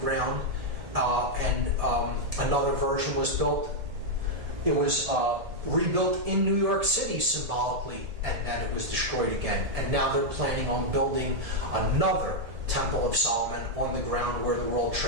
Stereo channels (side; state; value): left; late; 1.7 ms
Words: and another version was built. It was rebuilt in New York City symbolically, and then it was destroyed again. And now they're planning on building another Temple of Solomon on the ground where the World